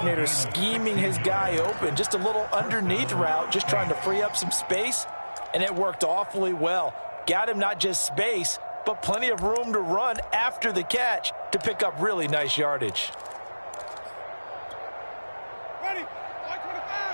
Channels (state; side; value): inverted; both; correlation -1.00